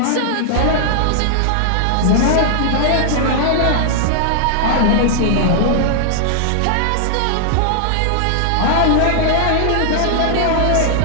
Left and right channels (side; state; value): both; different; correlation -0.01